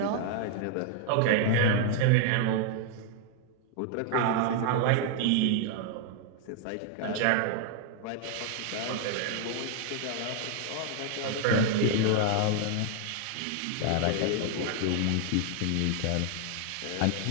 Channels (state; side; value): different; both; correlation 0.00